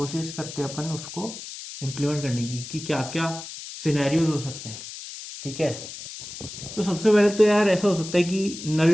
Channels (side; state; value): left; noise; hiss, 11 dB below the sound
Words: करते हैं अपन उसको इम्प्लीमेंट करने की कि क्या क्या सिनेरियोज हो सकते हैं, ठीक है। तो सबसे पहले तो यार ऐसा हो सकता है कि